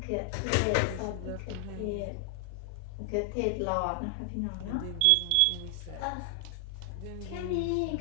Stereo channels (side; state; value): both; different; correlation 0.00